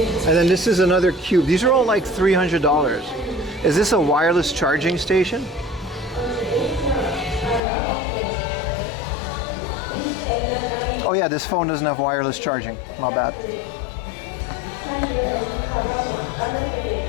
And then this is another cube. These are all like $300. Is this a wireless charging station? Oh yeah, this phone doesn't have wireless charging. My bad.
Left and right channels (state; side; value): drops out; right; at 7.6 s